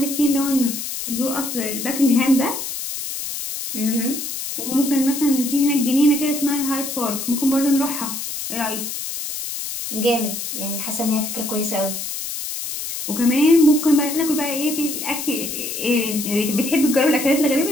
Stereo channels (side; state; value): left; noise; hiss, 6 dB below the sound